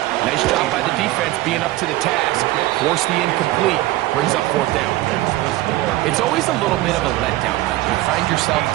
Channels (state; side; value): quieter; left; 17.1 dB